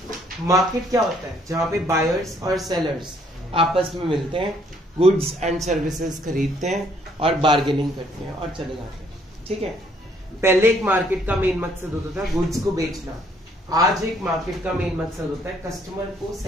Market क्या होता है? जहाँ पे buyers और sellers आपस में मिलते हैं, goods and services खरीदते हैं और बार्गेनिंग करते हैं और चले जाते हैं. ठीक है. पहले एक मार्केट का मेन मकसद होता था गुड्स को बेचना. आज एक मार्केट का मेन मकसद होता है कस्टमर को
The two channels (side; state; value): both; normal; correlation 0.65